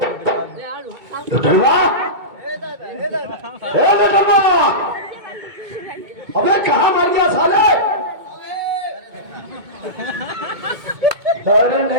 डलवा, डलवा, अबे कहाँ मर गया साले? अरे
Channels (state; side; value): late; left; 2.2 ms